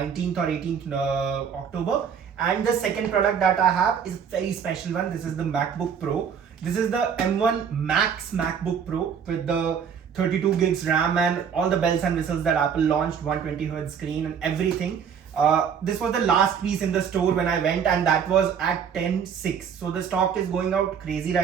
or 18th October. And the second product that I have is a very special one. This is the MacBook Pro. This is the M1 Max MacBook Pro with the 32 gigs RAM and all the bells and whistles that Apple launched, 120Hz screen and everything. This was the last piece in the store when I went, and that was at 10/6. So the stock is going out crazy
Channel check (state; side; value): quieter; left; 7.3 dB